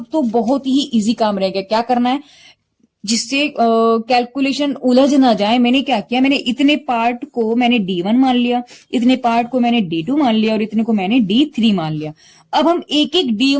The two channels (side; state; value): both; identical; correlation 1.00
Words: तो बहुत ही इजी काम रह गया, क्या करना है जिससे कैलकुलेशन उलझ ना जाए। मैंने क्या किया, मैंने इतने पार्ट को मैंने D1 मान लिया, इतने पार्ट को मैंने D2 मान लिया और इतने को मैंने D3 मान लिया। अब हम एक एक